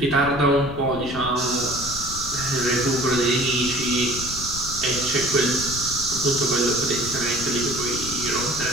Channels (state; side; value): noise; left; rumble, 11 dB below the sound